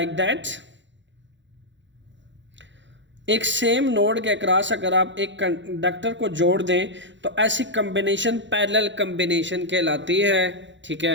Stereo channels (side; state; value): left; late; 0.54 ms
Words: दैट। एक सेम नोड के अक्रॉस अगर आप एक कंडक्टर को जोड़ दें तो ऐसी कॉम्बिनेशन पैरेलल कॉम्बिनेशन कहलाती है, ठीक